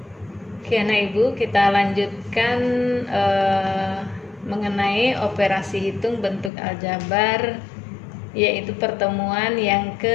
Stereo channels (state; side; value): drops out; right; at 6.5 s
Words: Oke anak ibu, kita lanjutkan mengenai operasi hitung bentuk aljabar, yaitu pertemuan yang